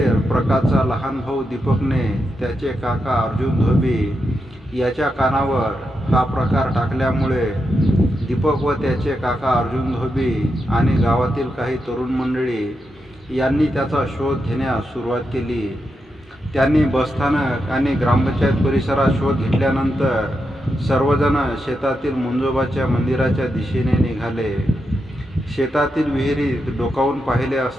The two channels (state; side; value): normal; both; correlation 0.85